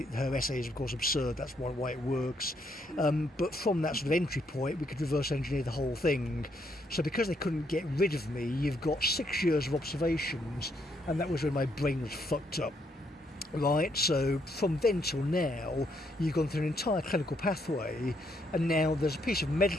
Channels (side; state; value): both; normal; correlation 0.74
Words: Her essay is of course absurd, that's why it works. But from that sort of entry point, we could reverse engineer the whole thing. So because they couldn't get rid of me, you've got 6 years of observations, and that was when my brain was fucked up. Right, so from then till now, you've gone through an entire clinical pathway, and now there's a piece of